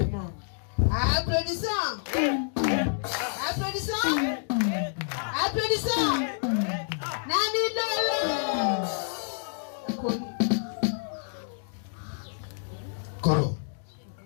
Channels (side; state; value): right; silent; digital silence